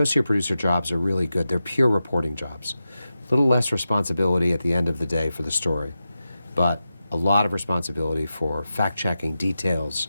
producer jobs are really good. They're pure reporting jobs. A little less responsibility at the end of the day for the story, but a lot of responsibility for fact-checking details,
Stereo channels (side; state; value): both; inverted; correlation -0.92